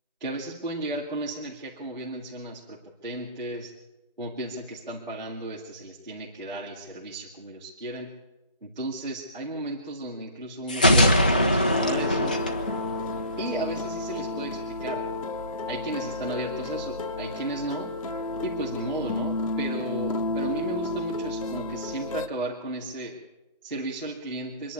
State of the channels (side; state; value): both; inverted; correlation -0.39